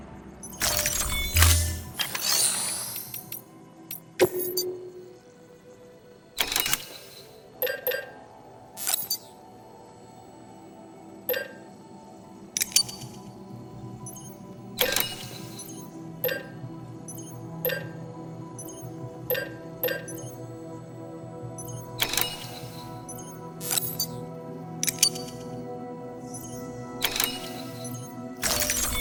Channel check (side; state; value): both; identical; correlation 1.00